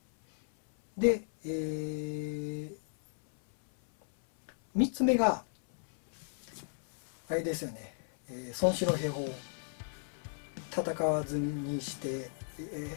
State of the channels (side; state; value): right; silent; 55 dB below the other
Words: で、3つ目があれですよね、孫子の兵法、戦わずにして、